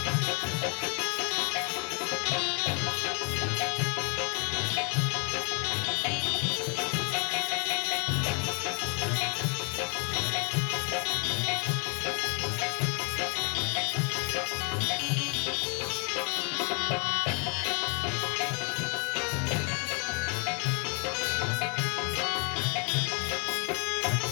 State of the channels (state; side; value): quieter; right; 36.9 dB